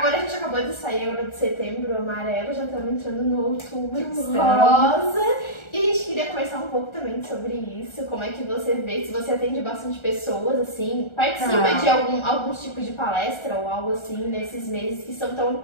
a gente acabou de sair agora de setembro amarelo, já estamos entrando no outubro rosa. E a gente queria conversar um pouco também sobre isso, como é que você vê, se você atende bastante pessoas, assim, participa de alguns tipos de palestra ou algo assim nesses meses que são tão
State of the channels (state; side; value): late; right; 1.3 ms